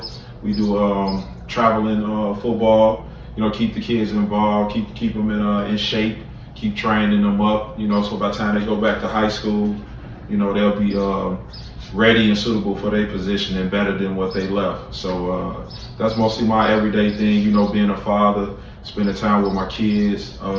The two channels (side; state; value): both; identical; correlation 1.00